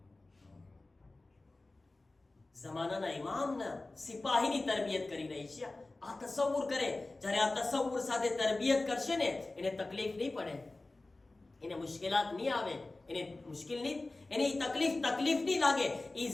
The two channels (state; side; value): quieter; right; 3.1 dB